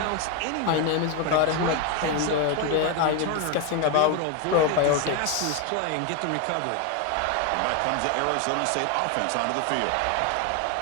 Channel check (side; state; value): both; different; correlation 0.01